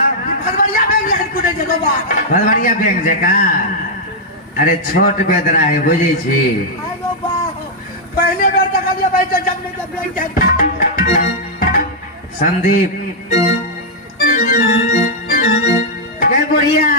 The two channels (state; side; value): normal; both; correlation -0.05